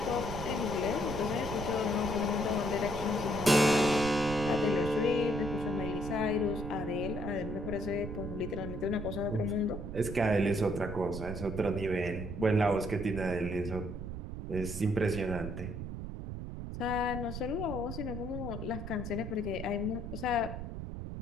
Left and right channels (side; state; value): right; noise; rumble, 7 dB below the sound